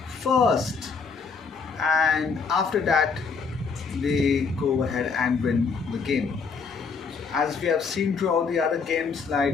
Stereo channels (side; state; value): right; quieter; 5.2 dB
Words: first, and after that they go ahead and win the game. As we have seen throughout the other games,